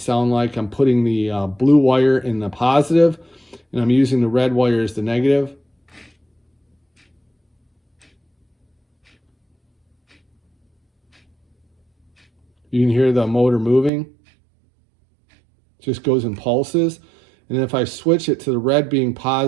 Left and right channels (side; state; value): left; drops out; at 13.9 s